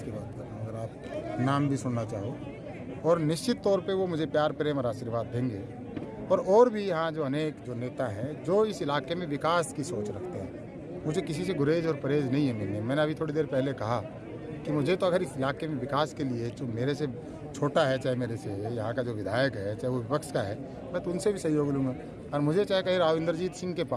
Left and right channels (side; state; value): both; identical; correlation 1.00